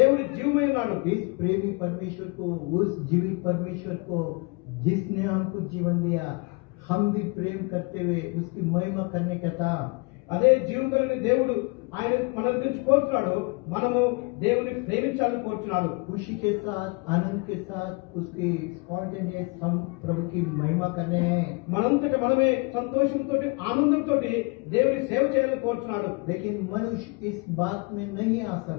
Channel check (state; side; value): quieter; right; 28.9 dB